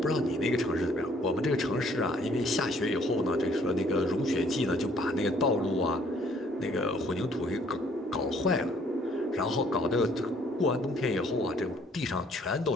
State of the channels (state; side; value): normal; both; correlation 0.62